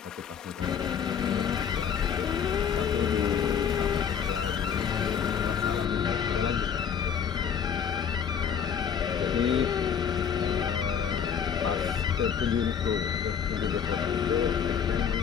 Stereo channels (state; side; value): quieter; right; 7.6 dB